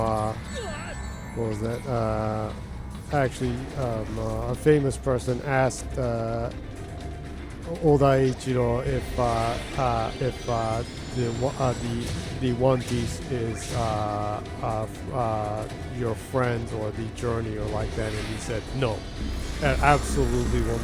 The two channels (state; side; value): identical; both; correlation 1.00